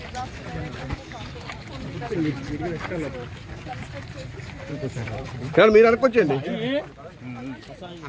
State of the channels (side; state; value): both; identical; correlation 1.00